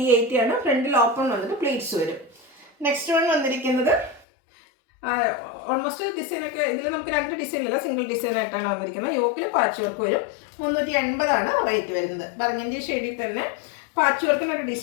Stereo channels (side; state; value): right; drops out; at 4.2 s